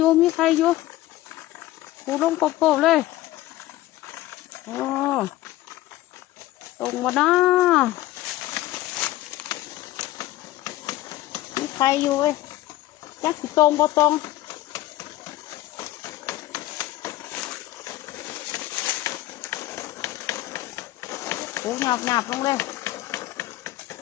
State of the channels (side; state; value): right; quieter; 15.9 dB